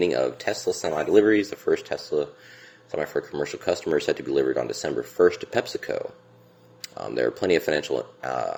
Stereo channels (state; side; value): identical; both; correlation 1.00